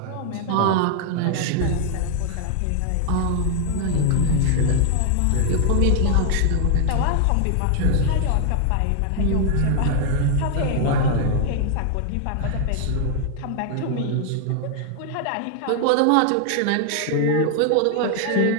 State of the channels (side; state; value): both; different; correlation 0.00